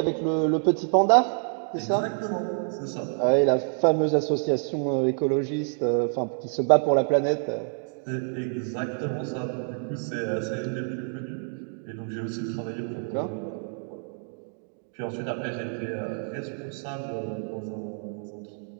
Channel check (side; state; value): left; silent; 57 dB below the other